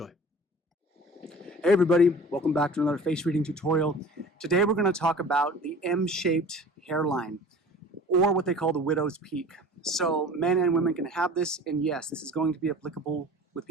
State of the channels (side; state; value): both; normal; correlation 0.43